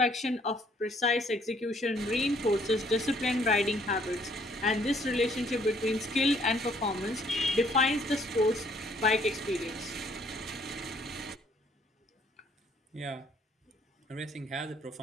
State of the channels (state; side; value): normal; both; correlation 0.64